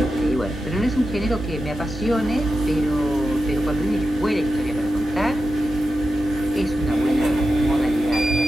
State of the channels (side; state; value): both; normal; correlation 0.90